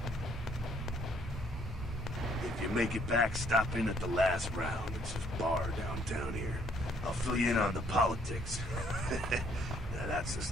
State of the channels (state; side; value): normal; both; correlation 0.65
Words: If you make it back, stop in at the last round. It's a bar downtown here. I'll fill you in on the politics. Now, that's the